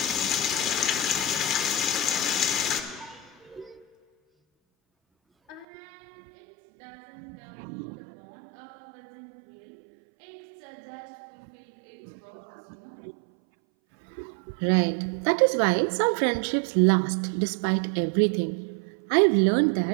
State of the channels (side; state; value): left; drops out; at 5.7 s